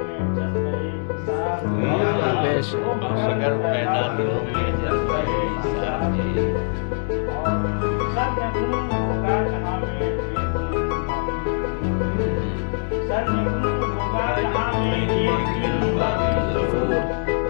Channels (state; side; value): silent; right; 64 dB below the other